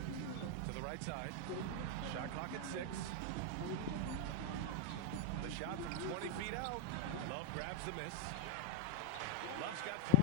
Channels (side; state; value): both; different; correlation 0.00